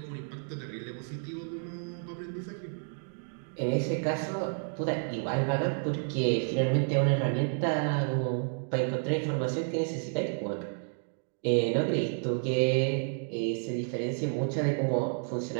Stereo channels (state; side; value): silent; left; 57 dB below the other